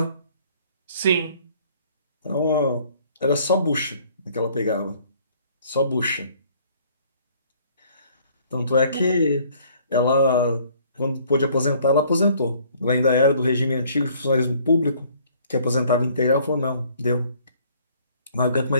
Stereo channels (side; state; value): both; inverted; correlation -0.59